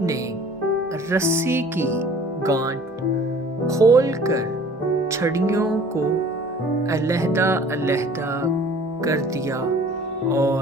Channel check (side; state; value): both; normal; correlation 0.50